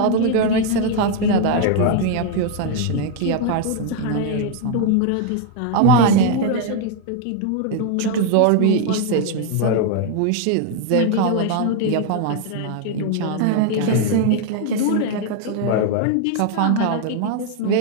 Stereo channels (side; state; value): both; different; correlation 0.00